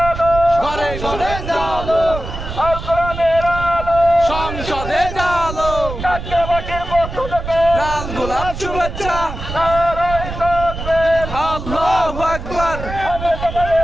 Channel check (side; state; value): right; noise; rumble, 8 dB below the sound